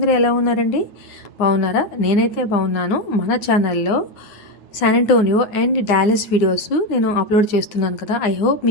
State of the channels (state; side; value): late; right; 9.7 ms